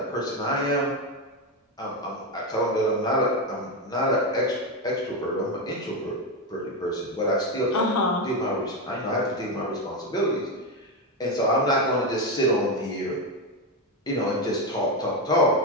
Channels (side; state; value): both; normal; correlation 0.10